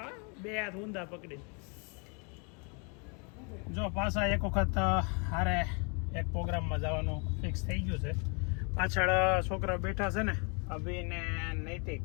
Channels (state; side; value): quieter; right; 35.3 dB